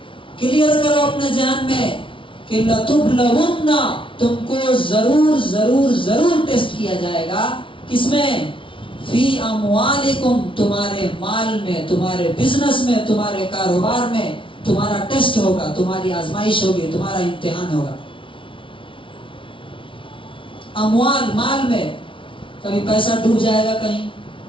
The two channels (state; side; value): late; right; 0.25 ms